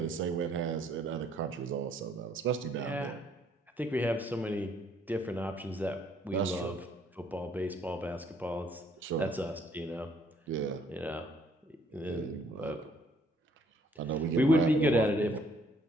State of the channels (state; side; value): normal; both; correlation 0.64